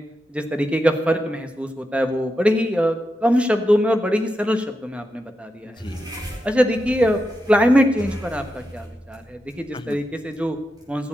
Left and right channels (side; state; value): both; normal; correlation 0.87